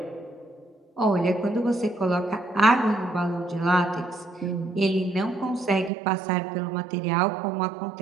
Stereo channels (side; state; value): left; drops out; at 5.9 s